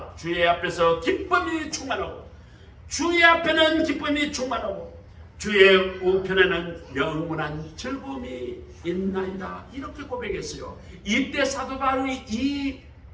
주의 앞에서 기쁨이 충만하고 주의 앞에는 기쁨이 충만하고 주의 우편에는 영원한 즐거움이 있나이다. 이렇게 고백했어요. 이때 사도 바울이 이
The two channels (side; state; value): both; identical; correlation 1.00